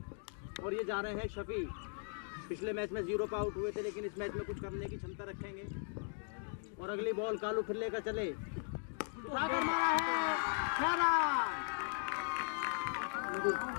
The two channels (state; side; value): silent; right; 52 dB below the other